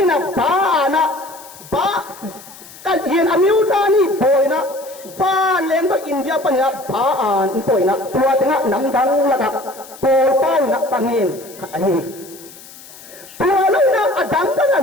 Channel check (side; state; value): left; noise; hiss, 19 dB below the sound